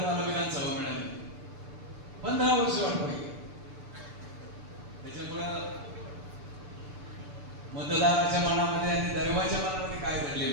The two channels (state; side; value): late; left; 6.9 ms